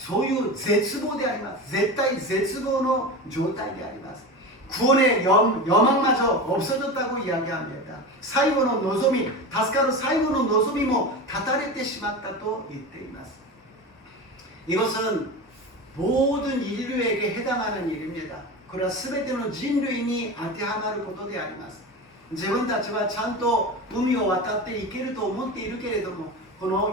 ういう絶望であります。絶対絶望の状態であります。 구원의 여망마저 없어졌다고 이야기합니다. 最後の望み、助かる最後の望みも断たれてしまったと言っています。 이것은 모든 인류에게 해당하는 일입니다. 그러나 全ての人類に当てはまることであります。自分たちはちゃんと海を渡っていけると思っているけれども、こ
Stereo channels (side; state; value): both; normal; correlation 0.26